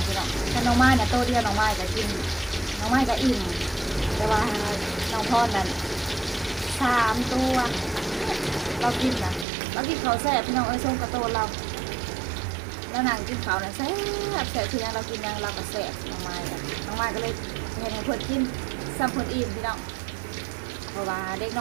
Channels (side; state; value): left; drops out; at 9.5 s